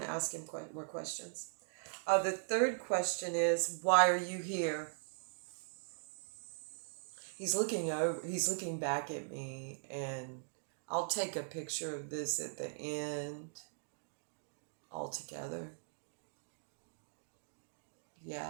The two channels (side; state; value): left; silent; digital silence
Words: to ask him more questions. The third question is, why are you here? He's looking back at me, and I'll take a picture of this at the end all together.